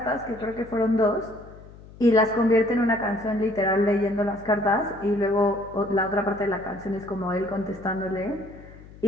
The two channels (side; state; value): left; noise; hum, 20 dB below the sound